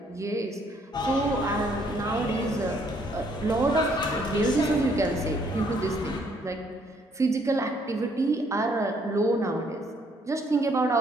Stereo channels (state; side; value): normal; both; correlation 0.67